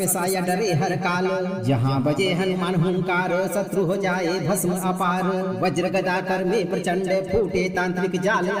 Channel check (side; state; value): both; identical; correlation 1.00